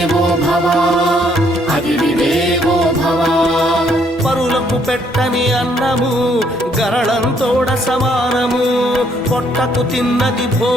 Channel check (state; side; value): normal; both; correlation 0.68